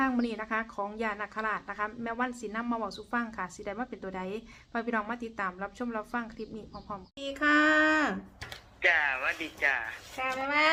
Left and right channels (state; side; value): identical; both; correlation 1.00